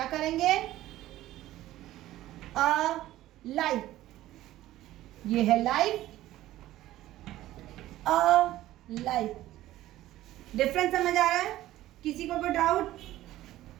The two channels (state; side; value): quieter; left; 14.9 dB